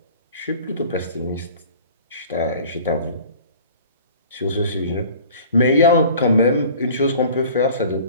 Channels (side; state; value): both; inverted; correlation -0.46